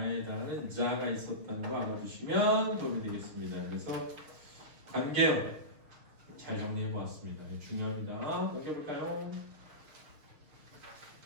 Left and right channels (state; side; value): late; left; 6.5 ms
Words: 해당하는 자가 있었다는 거 알아두시면 도움이 되겠습니다. 그래서 관계어 잘 정리해 보았습니다. 중요합니다. 넘겨볼까요?